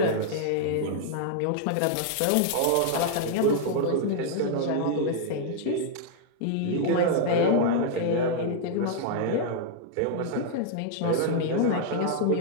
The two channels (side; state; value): both; different; correlation -0.01